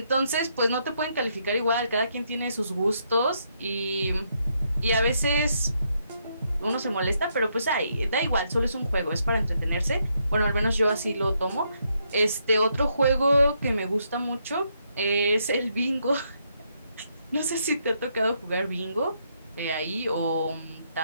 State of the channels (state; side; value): inverted; both; correlation -0.76